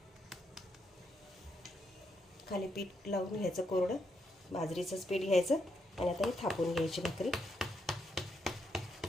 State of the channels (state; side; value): normal; both; correlation 0.79